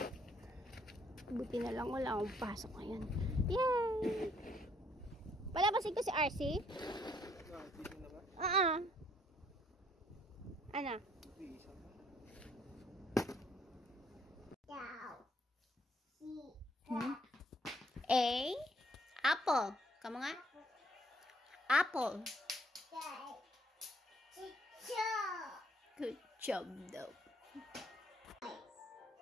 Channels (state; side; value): normal; both; correlation 0.66